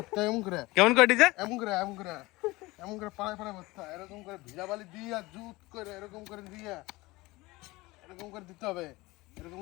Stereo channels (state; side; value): quieter; right; 21.2 dB